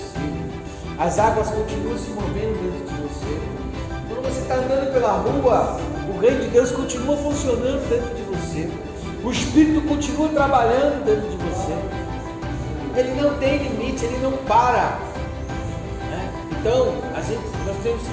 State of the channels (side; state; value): both; identical; correlation 1.00